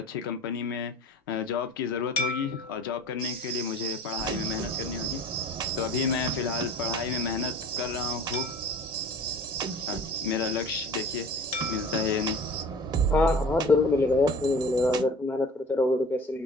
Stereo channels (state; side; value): normal; both; correlation 0.41